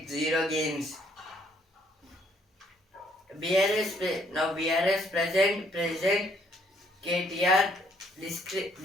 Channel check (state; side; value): normal; both; correlation 0.66